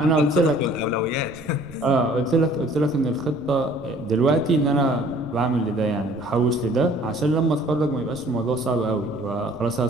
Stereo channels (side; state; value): right; noise; rumble, 21 dB below the sound